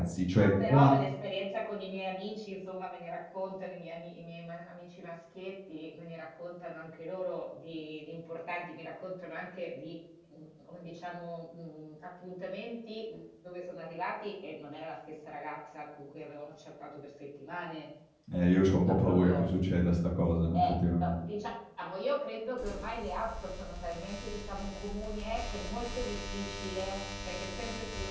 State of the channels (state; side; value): identical; both; correlation 1.00